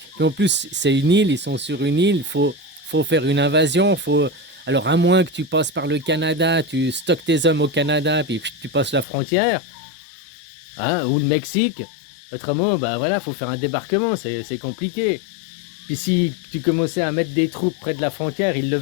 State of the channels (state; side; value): drops out; right; at 9.1 s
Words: Puis en plus, c'est une île, ils sont sur une île, il faut faire une invasion, Alors à moins que tu passes par le Canada, tu stockes tes hommes au Canada, puis tu passes la frontière, hein, ou le Mexique. Autrement, bah voilà, faut faire un débarquement, c'est compliqué. Puis si tu commençais à mettre des troupes près de la frontière, ils le